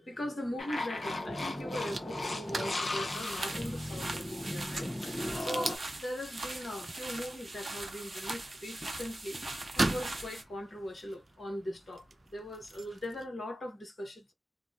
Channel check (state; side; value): normal; both; correlation 0.93